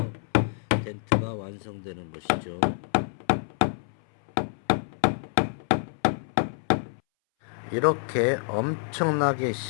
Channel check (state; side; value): silent; right; 60 dB below the other